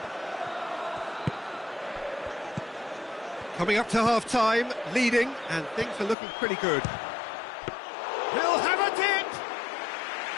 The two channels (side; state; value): right; drops out; at 6.2 s